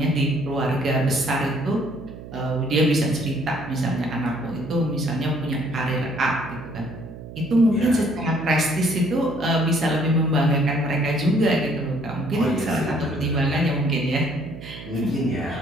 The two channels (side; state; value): right; noise; hum, 14 dB below the sound